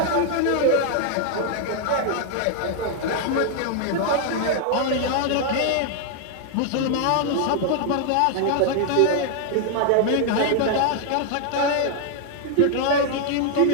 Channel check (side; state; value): both; different; correlation 0.00